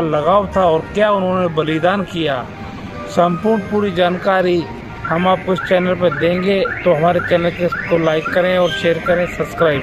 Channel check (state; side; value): identical; both; correlation 1.00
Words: लगाव था और क्या उन्होंने बलिदान किया, संपूर्ण पूरी जानकारी हम आपको इस चैनल पर देंगे। तो हमारे चैनल को लाइक करें और शेयर करें,